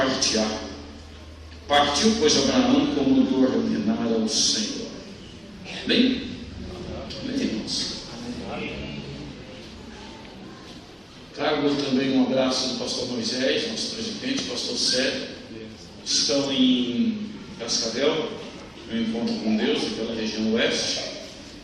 A. Partiu, pois, Abraão como lhe ordenara o Senhor. Bem? Amém, irmãos? Trago também um abraço do pastor Moisés, nosso presidente, pastor Sérgio. Estão em Cascavel, no encontro com Deus, pela região oeste.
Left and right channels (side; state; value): both; identical; correlation 1.00